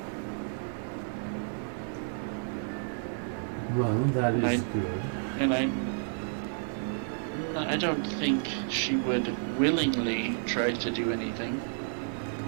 Well, that is I- good. And I don't think she would willingly try to do anything.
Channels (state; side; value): silent; left; digital silence